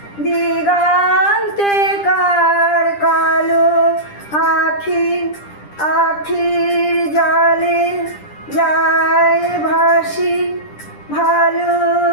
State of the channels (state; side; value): late; right; 10 ms